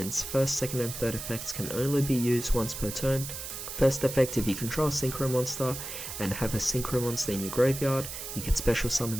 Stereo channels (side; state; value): right; noise; hiss, 8 dB below the sound